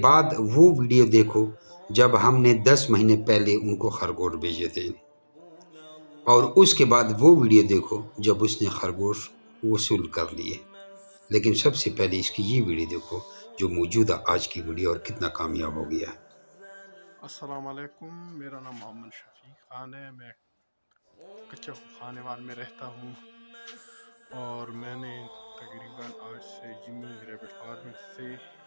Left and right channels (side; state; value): both; inverted; correlation -1.00